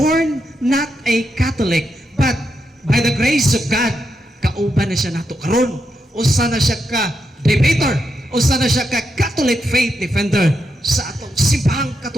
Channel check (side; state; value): both; normal; correlation 0.84